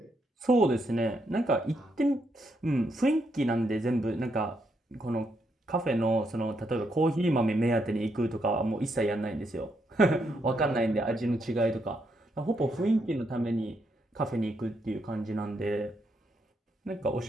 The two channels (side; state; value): both; normal; correlation 0.78